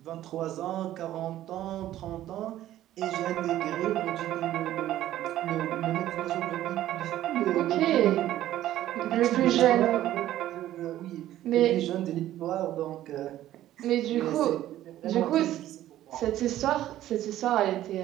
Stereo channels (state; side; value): quieter; left; 13.4 dB